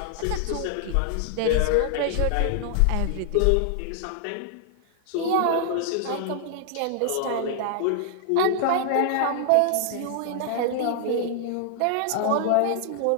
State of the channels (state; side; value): different; both; correlation -0.01